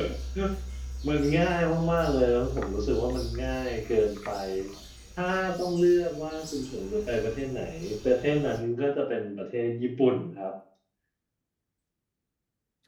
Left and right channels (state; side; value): identical; both; correlation 1.00